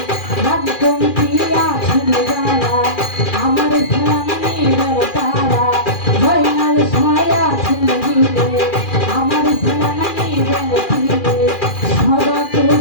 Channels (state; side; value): late; right; 2.4 ms